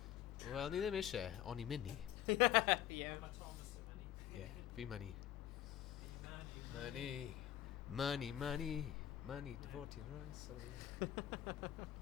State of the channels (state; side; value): quieter; right; 11.9 dB